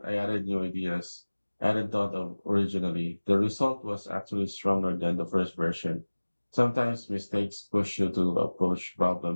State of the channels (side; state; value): both; inverted; correlation -1.00